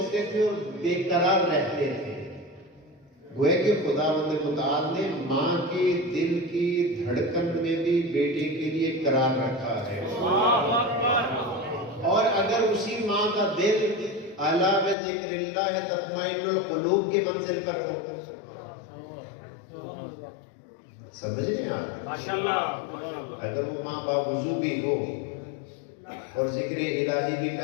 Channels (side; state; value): right; drops out; at 15.0 s